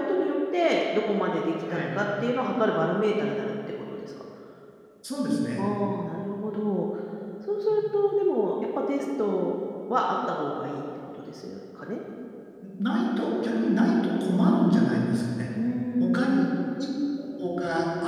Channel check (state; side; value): identical; both; correlation 1.00